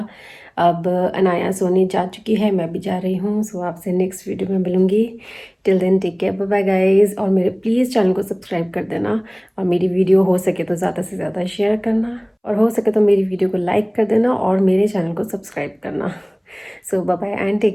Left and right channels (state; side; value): identical; both; correlation 1.00